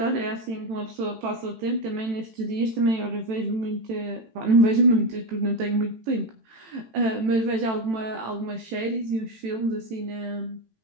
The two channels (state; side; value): late; left; 18 ms